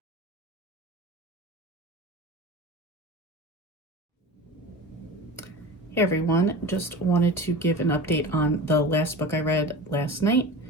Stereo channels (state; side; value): normal; both; correlation 0.32